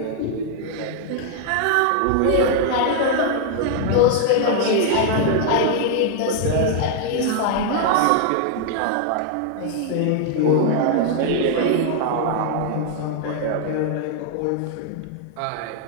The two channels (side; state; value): both; different; correlation 0.00